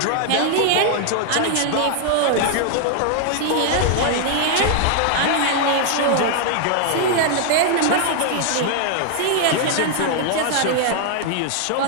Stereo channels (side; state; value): both; different; correlation 0.00